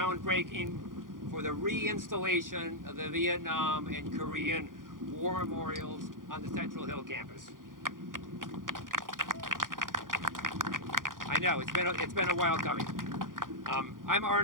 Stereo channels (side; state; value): left; late; 0.90 ms